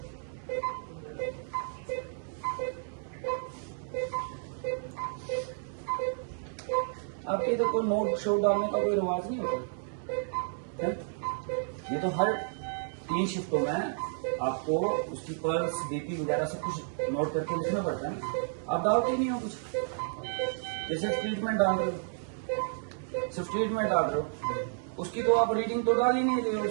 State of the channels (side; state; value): left; silent; digital silence